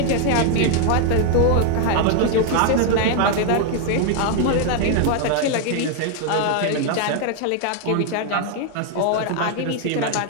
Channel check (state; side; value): different; both; correlation 0.00